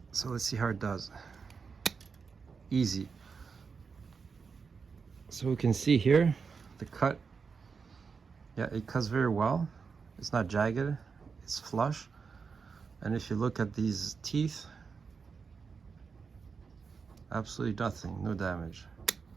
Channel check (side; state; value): left; quieter; 5.4 dB